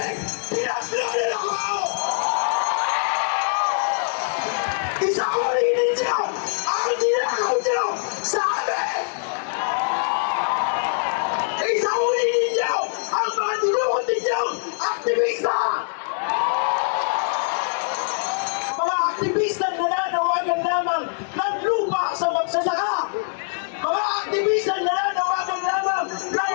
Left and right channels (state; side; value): silent; right; 60 dB below the other